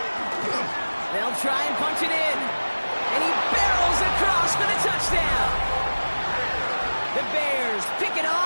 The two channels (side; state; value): both; inverted; correlation -1.00